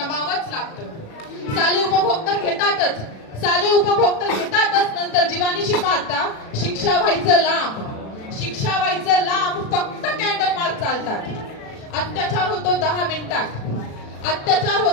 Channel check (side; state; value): right; late; 36 ms